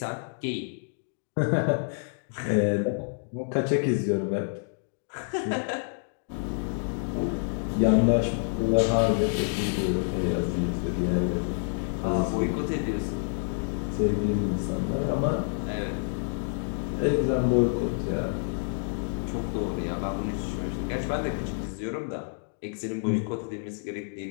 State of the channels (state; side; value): silent; right; digital silence